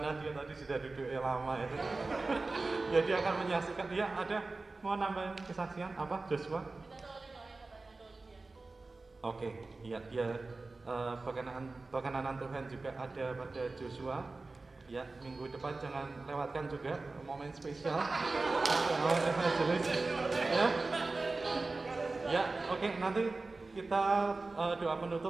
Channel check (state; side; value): quieter; left; 3.5 dB